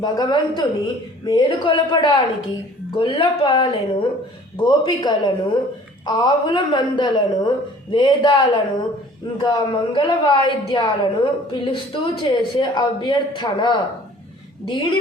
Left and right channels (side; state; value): both; normal; correlation 0.51